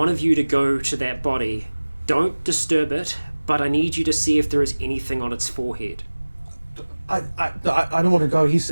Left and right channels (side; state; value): both; inverted; correlation -1.00